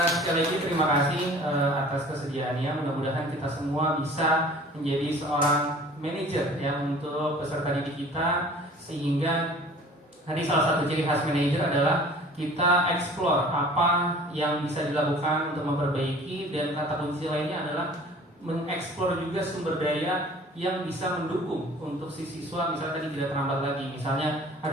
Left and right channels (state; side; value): normal; both; correlation 0.47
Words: Sekali lagi terima kasih atas kesediaannya. Mudah-mudahan kita semua bisa menjadi seorang manajer ya untuk peserta didik kita, sehingga tadi salah satu ciri khas manajer adalah kita explore apa yang bisa dilakukan untuk memperbaiki, dan kata kunci lainnya adalah mengeksplor juga sumber daya yang bisa mendukung untuk si siswa, misalnya tadi tidak terlambat lagi, misalnya ada